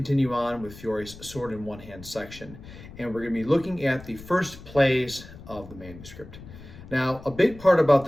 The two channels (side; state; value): left; noise; rumble, 17 dB below the sound